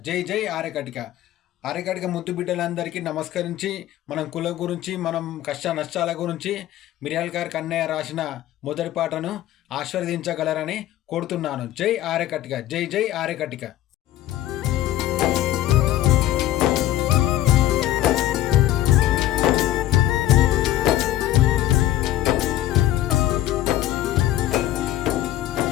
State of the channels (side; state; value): right; quieter; 13.7 dB